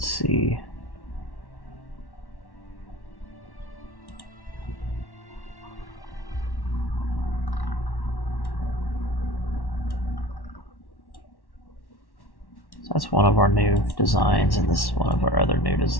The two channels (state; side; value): late; right; 1.1 ms